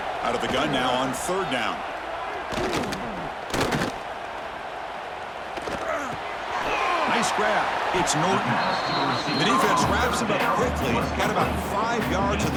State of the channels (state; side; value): identical; both; correlation 1.00